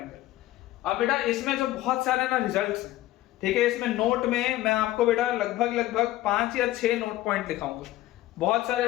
अब बेटा इसमें जो बहुत सारे ना रिजल्ट्स हैं, ठीक है, इसमें नोट में मैं आपको बेटा लगभग 5 या 6 नोट पॉइंट दिखाऊंगा। बहुत सारे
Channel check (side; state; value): right; quieter; 15.8 dB